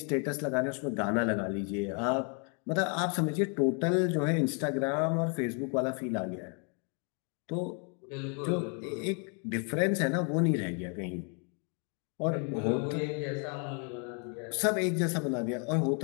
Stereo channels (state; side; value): quieter; right; 38.7 dB